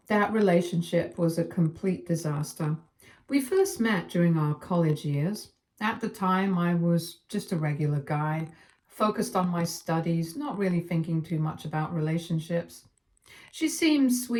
that relationship was a complete disaster. We first met during our college years. At the time, I was just a regular guy, focused on my studies, not really thinking too much about relationships. She seemed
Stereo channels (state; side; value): identical; both; correlation 1.00